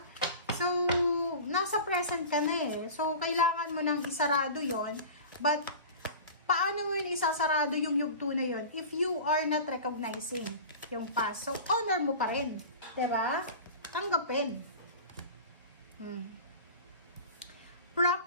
So, nasa present ka na eh. So, kailangan mo nang isarado yon. But, paano mo yun isasarado yung yugto na yun if you are not recognizing yung past? So, honor mo pa rin, diba? Tanggapin.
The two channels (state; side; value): inverted; both; correlation -0.36